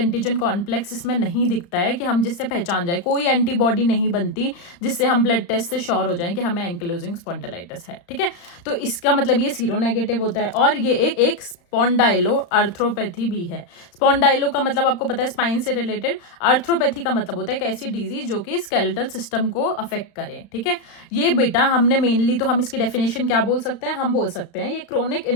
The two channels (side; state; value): right; late; 35 ms